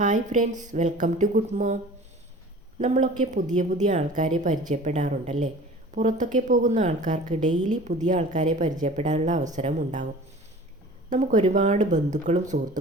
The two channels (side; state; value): both; normal; correlation 0.43